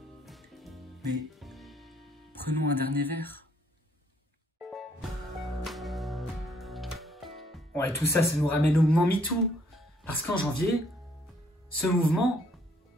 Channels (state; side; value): normal; both; correlation 0.66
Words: Mais prenons un dernier verre. Ouais, tout ça, ça nous ramène au mouvement MeToo. Parce qu'en janvier, ce mouvement,